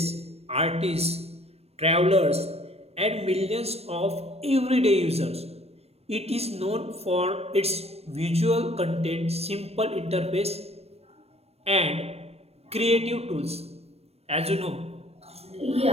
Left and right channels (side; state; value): left; late; 0.30 ms